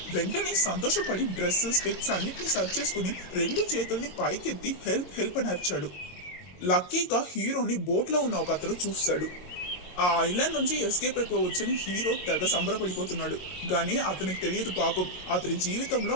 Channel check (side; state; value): right; late; 23 ms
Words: వెంటనే సంతోషపడి డ్రెస్ స్పెక్స్ అన్నిటిని సర్చ్ చేసుకుని 2 చేతుల్ని పైకెత్తి హెల్ప్ హెల్ప్ అని అరిచాడు. లక్కీగా హీరోని బోట్ లో ఉన్న ఒక అతను చూస్తాడు. ఆ ఐలాండ్ నుంచి ఎస్కేప్ అయిపోవచ్చని హీరో తెగ సంబరపడిపోతున్నాడు. కానీ అతనికి తెలియదు పాపం, అతని జీవితంలో